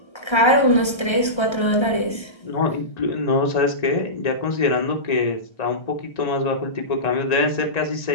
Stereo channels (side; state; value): right; late; 1.3 ms